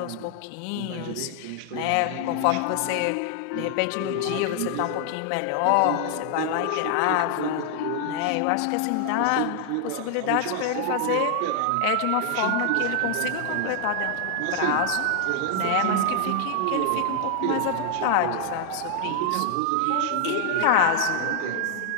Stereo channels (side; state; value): both; different; correlation 0.00